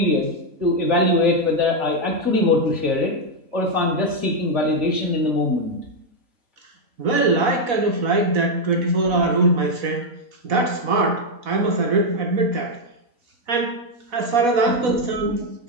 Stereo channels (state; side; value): late; left; 4.1 ms